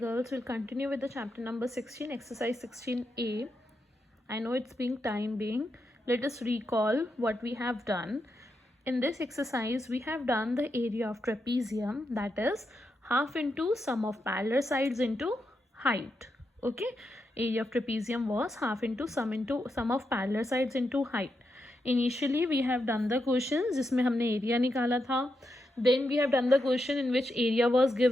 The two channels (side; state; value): both; normal; correlation 0.85